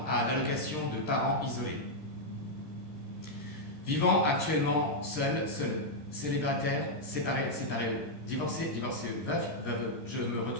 à l'allocation de parents isolés. Vivant actuellement seul, célibataire, séparé, divorcé, veuf, veuve, je me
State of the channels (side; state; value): right; late; 13 ms